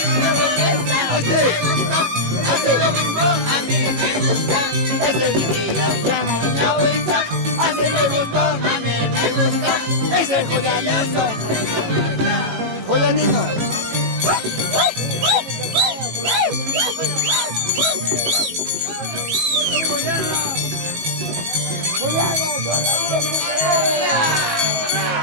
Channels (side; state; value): left; late; 18 ms